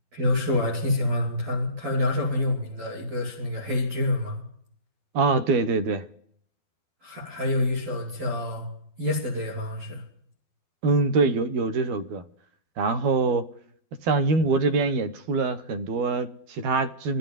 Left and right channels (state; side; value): late; left; 12 ms